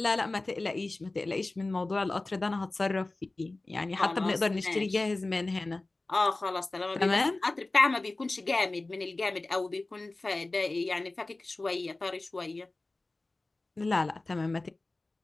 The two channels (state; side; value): quieter; right; 3.1 dB